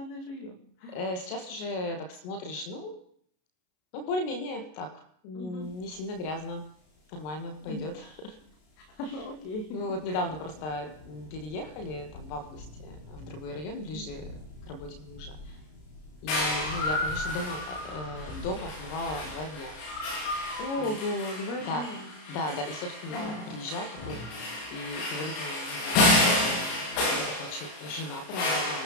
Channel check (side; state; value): right; late; 33 ms